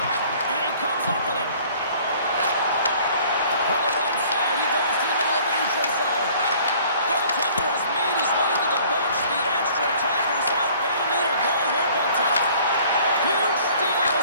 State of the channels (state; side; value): inverted; both; correlation -0.53